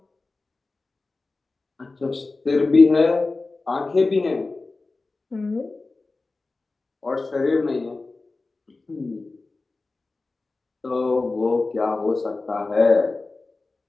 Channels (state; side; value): quieter; right; 3.5 dB